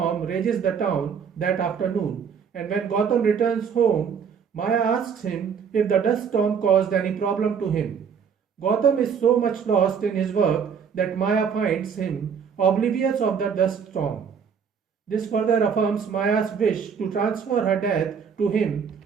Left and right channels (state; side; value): quieter; left; 6.8 dB